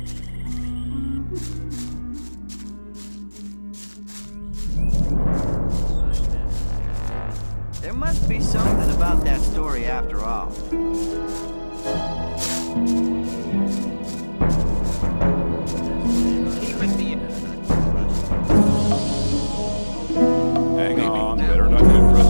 There must be something about that story after all. Hang on, better not get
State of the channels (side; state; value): both; inverted; correlation -1.00